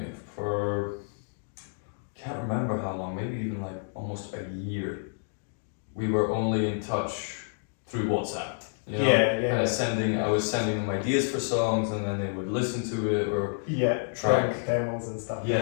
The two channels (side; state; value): right; silent; digital silence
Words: can't remember how long, maybe even like almost a year, we were only in touch through WhatsApp. I was sending them ideas for songs, and then they would listen to it or track demos and stuff.